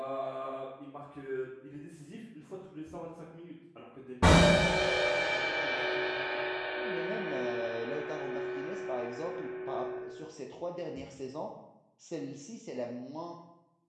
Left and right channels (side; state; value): both; identical; correlation 1.00